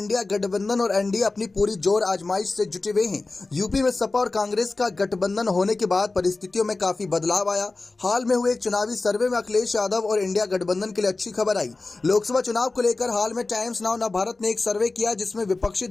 गठबंधन और एनडीए अपनी पूरी जोर आजमाइश से जुटे हुए हैं। यूपी में सपा और कांग्रेस का गठबंधन होने के बाद परिस्थितियों में काफी बदलाव आया। हाल में हुए एक चुनावी सर्वे में अखिलेश यादव और इंडिया गठबंधन के लिए अच्छी खबर आई। लोकसभा चुनाव को लेकर हाल में टाइम्स नाउ नवभारत ने एक सर्वे किया जिसमें विपक्षी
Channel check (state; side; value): quieter; right; 3.4 dB